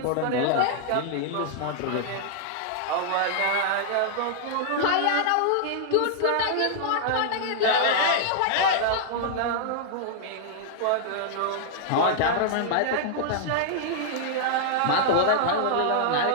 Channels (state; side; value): different; both; correlation -0.01